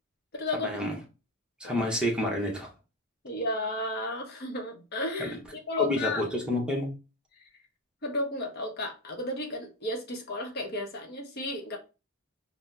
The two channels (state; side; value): normal; both; correlation 0.17